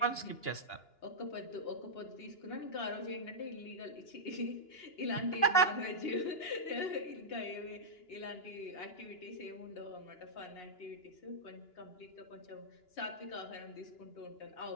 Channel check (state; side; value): late; right; 2.9 ms